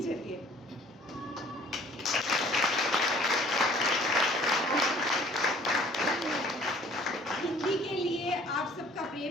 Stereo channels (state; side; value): normal; both; correlation 0.54